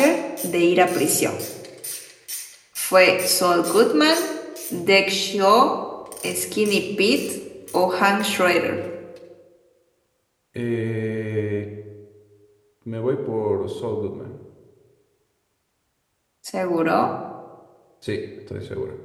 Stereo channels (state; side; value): identical; both; correlation 1.00